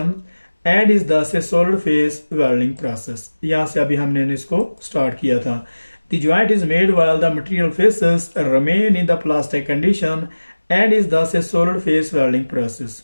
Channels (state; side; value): inverted; both; correlation -1.00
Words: and is thus a solid phase welding process. यहाँ से अभी हमने इसको स्टार्ट किया था। The joint is made while the material faces remain in the plastic condition and is thus a solid phase welding process.